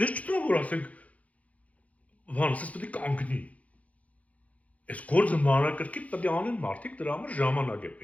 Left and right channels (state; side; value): late; right; 0.068 ms